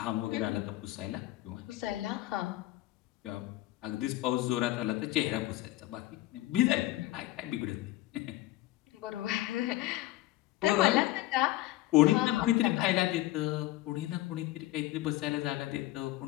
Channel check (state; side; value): quieter; right; 16.8 dB